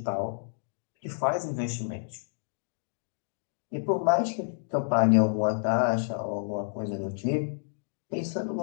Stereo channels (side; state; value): right; silent; digital silence